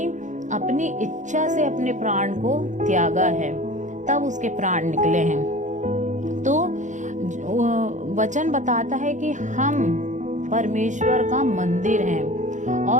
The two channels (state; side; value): late; left; 0.36 ms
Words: अपनी इच्छा से अपने प्राण को त्यागा है, तब उसके प्राण निकले हैं। तो वचन बताता है कि हम परमेश्वर का मंदिर हैं